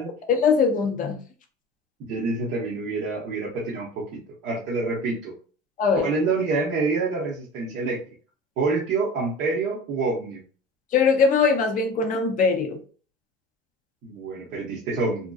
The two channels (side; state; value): both; normal; correlation 0.37